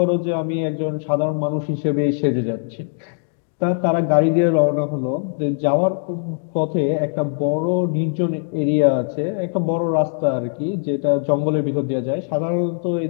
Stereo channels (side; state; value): right; silent; digital silence